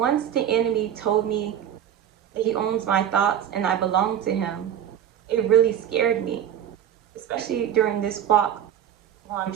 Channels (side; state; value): left; quieter; 9.9 dB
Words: the enemy told me that he owns my thoughts and I belong to him, it really scared me, especially during this walk while I'm